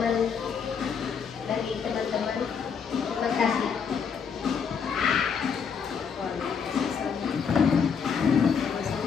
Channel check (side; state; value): right; quieter; 6.5 dB